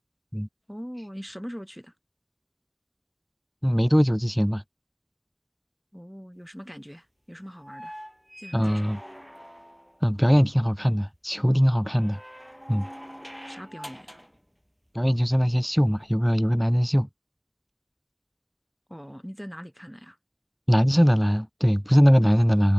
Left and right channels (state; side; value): identical; both; correlation 1.00